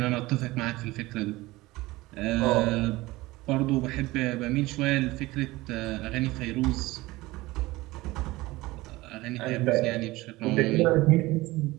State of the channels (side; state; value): left; quieter; 19.8 dB